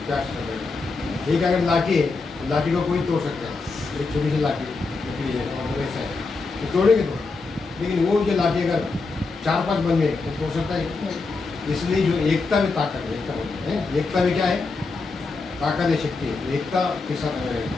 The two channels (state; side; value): quieter; right; 4.0 dB